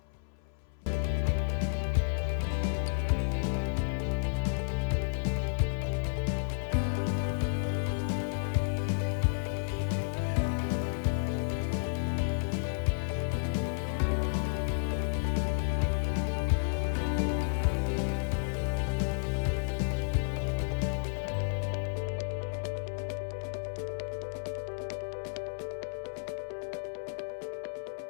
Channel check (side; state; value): right; silent; 56 dB below the other